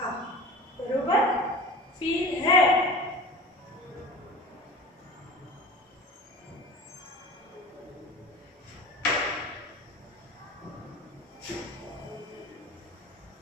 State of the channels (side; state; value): both; normal; correlation 0.37